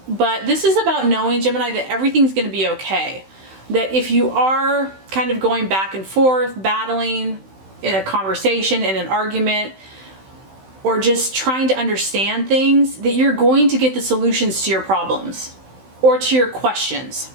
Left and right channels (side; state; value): left; late; 16 ms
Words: but this is about knowing, Gemini, that everything's going to be okay. That if you are kind of going back and forth, battling in a conversation, in an argument, or just trying to understand things, that you're going to get the solutions to your problems or to your questions.